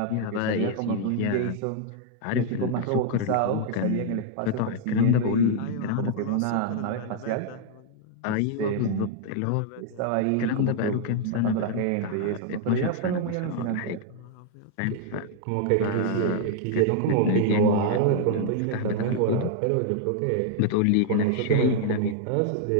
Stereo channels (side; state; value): both; different; correlation -0.01